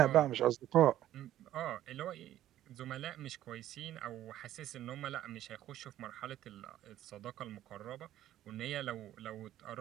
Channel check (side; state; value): left; quieter; 13.0 dB